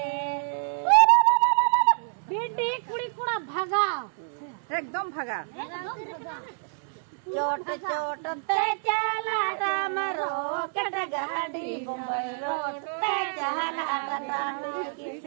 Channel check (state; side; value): silent; left; digital silence